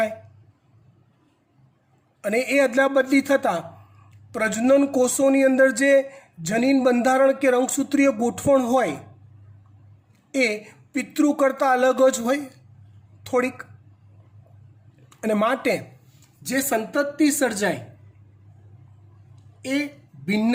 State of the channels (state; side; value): identical; both; correlation 1.00